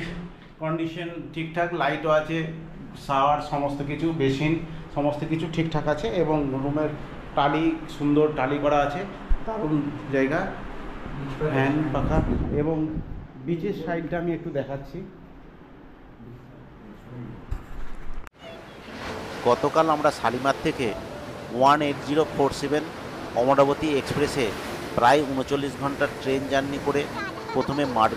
কন্ডিশন ঠিকঠাক, লাইটও আছে, শাওয়ার সমস্ত কিছু, বেসিন সমস্ত কিছু ঠিকঠাক আছে। এবং রুমের টালি, সুন্দর টালি করা আছে, দারুণ জায়গা, ফ্যান পাখা। এবং বিচের সাইডটা আমি একটু দেখাচ্ছি। গতকাল আমরা শালিমার থেকে 18047 অমরাবতী এক্সপ্রেসে প্রায় 39 ঘন্টার ট্রেন জার্নি করে প্রথমে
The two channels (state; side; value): identical; both; correlation 1.00